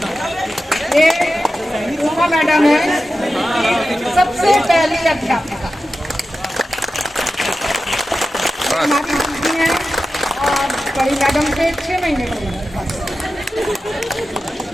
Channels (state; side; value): normal; both; correlation 0.92